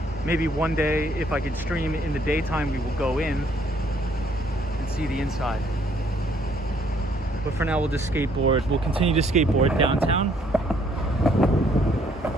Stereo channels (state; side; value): normal; both; correlation 0.65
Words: Maybe one day, if I could stream in the daytime, we will go in and see the inside. But for now, we'll just skateboard. We'll continue to skateboard downtown.